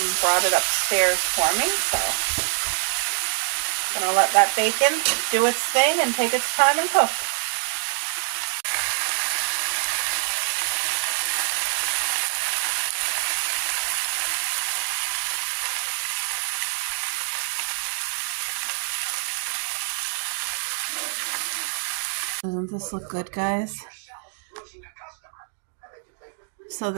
brought it upstairs for me, so I'm going to let that bacon do its thing and take its time and cook. Doesn't this look good, guys? So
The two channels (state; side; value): silent; left; 59 dB below the other